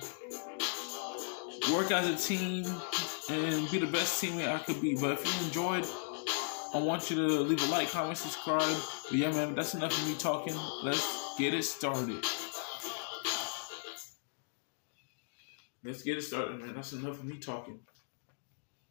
work as a team and be the best teammate I could be. But if you enjoyed, I want you to leave a like, comment, subscribe. But yeah, man, that's enough of me talking. Let's get it started. Let's get it started, man. That's enough of me talking.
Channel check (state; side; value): silent; right; digital silence